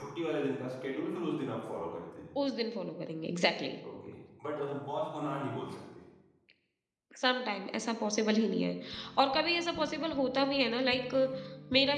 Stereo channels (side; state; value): both; identical; correlation 1.00